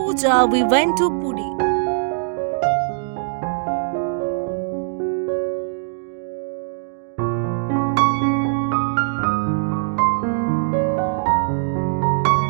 we went to Puri.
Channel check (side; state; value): left; silent; digital silence